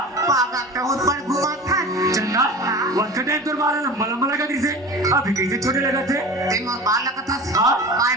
पागा बहुत पर घुमा था चंदा वक्त टाइम तो बाल लंबा लंबा लगा थे अभी कैसे छोटे लगा थे ते मोर बाल लगा था हां काय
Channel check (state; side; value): normal; both; correlation 0.35